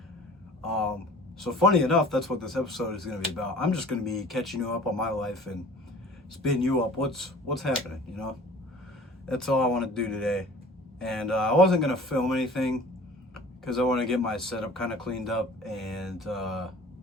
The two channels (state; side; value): normal; both; correlation 0.46